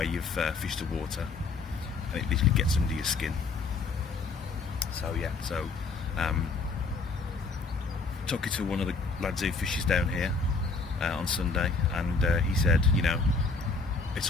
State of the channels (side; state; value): right; quieter; 4.1 dB